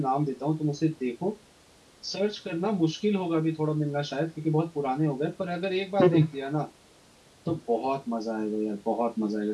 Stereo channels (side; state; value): both; identical; correlation 1.00